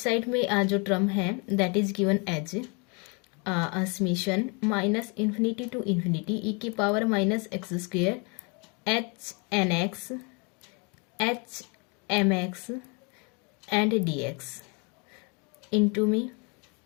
में जो टर्म है that is given as summation minus infinity to infinity e की power minus x square h nx h mx and dx into में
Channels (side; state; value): right; quieter; 33.0 dB